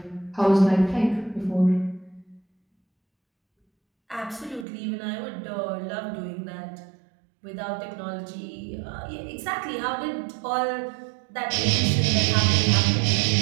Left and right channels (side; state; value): left; drops out; at 4.7 s